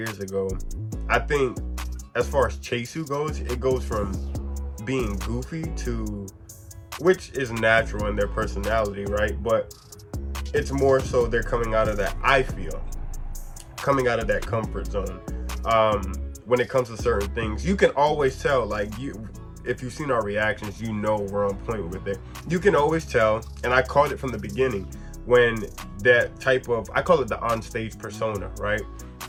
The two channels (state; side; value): identical; both; correlation 1.00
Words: ago, I think as far as Chaesoo goes, it goes from being goofy to, which is natural in their personality, right? But it's more so they're coming out of that, I feel, coming out of that comfort zone. When it comes to certain things, you can always tell, like, if you've seen our reactions, you know we're on point with it. You can always tell, and I called it from the beginning, when that type of, I call it the on-stage persona, right?